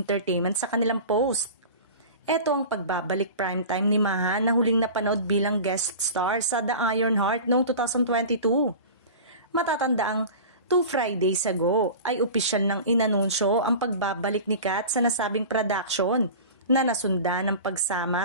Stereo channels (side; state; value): both; inverted; correlation -0.35